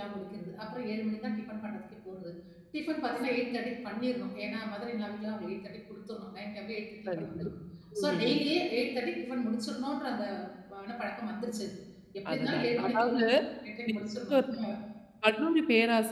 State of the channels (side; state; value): both; identical; correlation 1.00